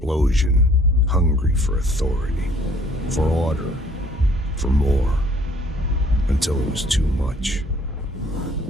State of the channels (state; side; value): normal; both; correlation 0.58